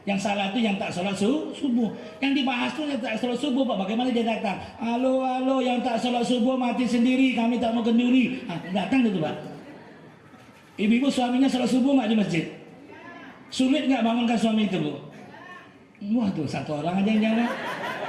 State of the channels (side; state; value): both; identical; correlation 1.00